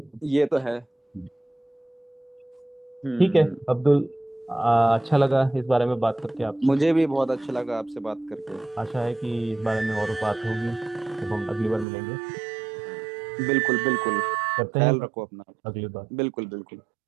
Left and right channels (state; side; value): drops out; left; at 11.9 s